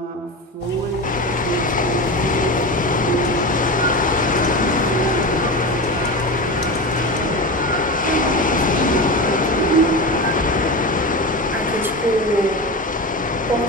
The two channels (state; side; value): normal; both; correlation 0.24